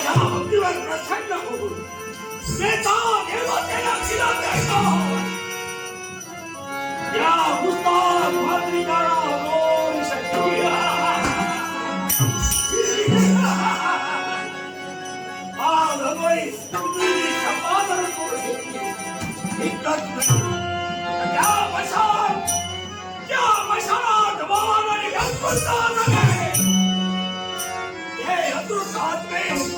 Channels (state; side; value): identical; both; correlation 1.00